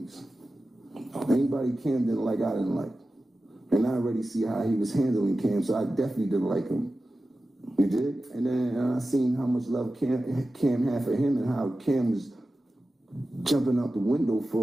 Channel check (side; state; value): both; normal; correlation 0.94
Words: Anybody Cam didn't like, I didn't like. And I already see how he was handling Cam, so I definitely didn't like him. You did? And then I seen how much love Cam had for him and how Cam was jumping out the window